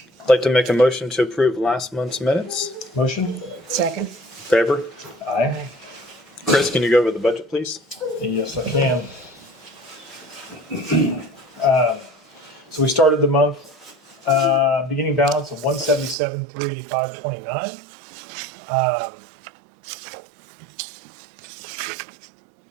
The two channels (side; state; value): left; drops out; at 16.2 s